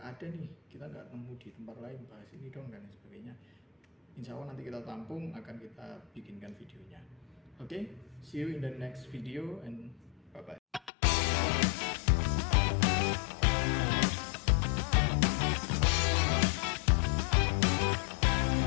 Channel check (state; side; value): drops out; right; at 10.9 s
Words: ada nih, kita nggak nemu di tempat lain, bahas ini dong dan sebagainya. Insya Allah nanti kita tampung, akan kita bikinkan videonya. Oke, see you in the next video and bye bye.